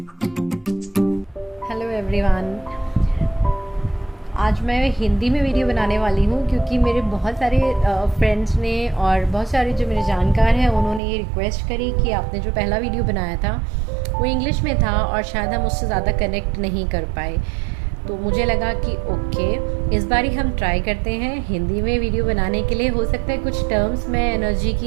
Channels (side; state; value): left; drops out; at 11.0 s